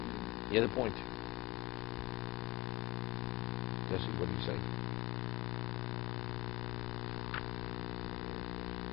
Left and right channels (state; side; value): quieter; right; 21.9 dB